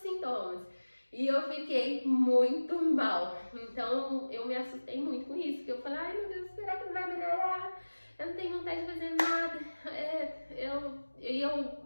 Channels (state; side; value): inverted; both; correlation -1.00